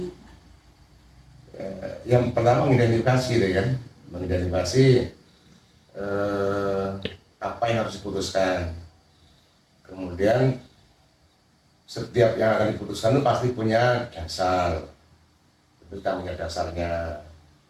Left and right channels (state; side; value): identical; both; correlation 1.00